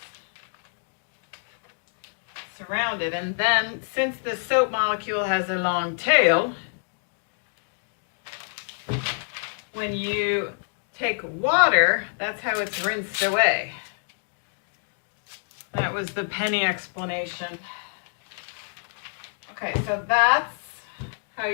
Surrounded, and then since the soap molecule has a long tail, when you take water, that's how it's rinsed away. That was the penny explanation. Okay, so that's how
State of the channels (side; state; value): right; silent; digital silence